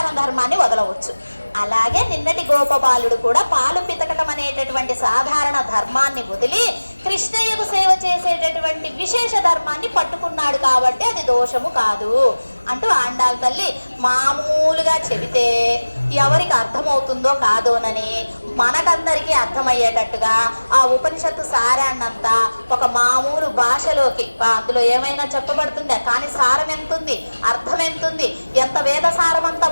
ధర్మాన్ని వదలవచ్చు. అలాగే నిన్నటి గోపబాలుడు కూడా పాలు పితకటం అనేటటువంటి సాధారణ ధర్మాన్ని వదిలి కృష్ణయ్యకు సేవ చేసేటటువంటి విశేష ధర్మాన్ని పట్టుకున్నాడు కాబట్టి అది దోషము కాదు అంటూ ఆండాల్ తల్లి మామూలుగా చెబితే ఎవరికి అర్థమవుతుందో కాదోనని మనకందరికీ అర్థమయ్యేటట్టుగా ఆ ఉపనిషత్తు సారాన్నంతా ఒక మామూలు భాషలోకి, అందులో ఏమైనా చెప్పబడుతుందా? కానీ సారం ఎంతుంది, అర్థం ఎంతుంది, ఎంత వేద సారమంతా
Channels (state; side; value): inverted; both; correlation -1.00